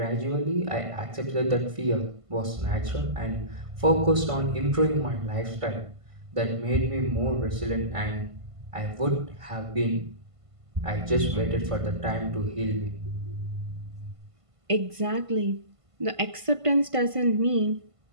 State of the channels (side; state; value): left; late; 1.5 ms